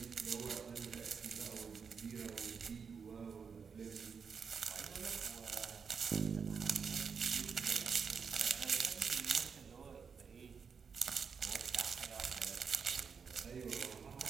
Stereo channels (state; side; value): quieter; left; 6.1 dB